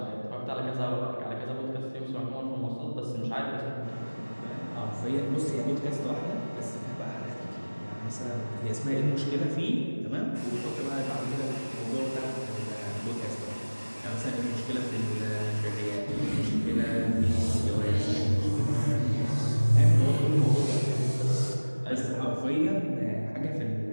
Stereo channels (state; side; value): inverted; both; correlation -1.00